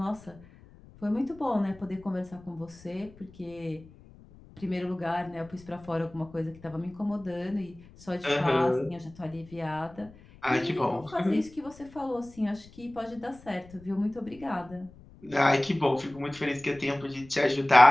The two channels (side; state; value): left; noise; rumble, 22 dB below the sound